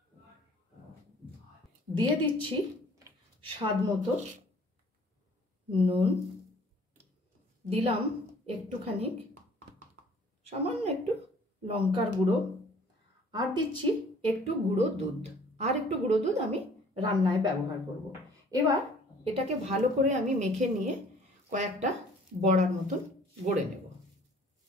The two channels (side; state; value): both; normal; correlation 0.55